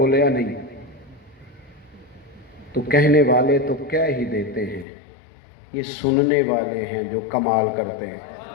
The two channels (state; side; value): drops out; right; at 4.9 s